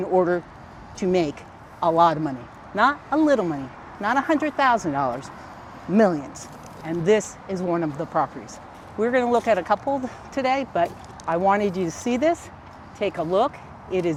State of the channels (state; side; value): identical; both; correlation 1.00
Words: order to make a lot of money. Not a little money, not $100,000, millions. And this is one of the properties. We're going to look at a couple today, but I wanted you to see this. Take a look. It